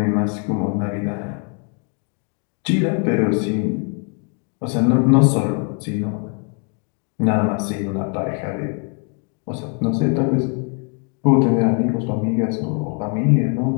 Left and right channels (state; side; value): quieter; right; 37.7 dB